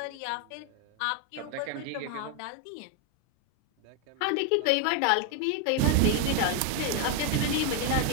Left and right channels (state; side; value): different; both; correlation 0.01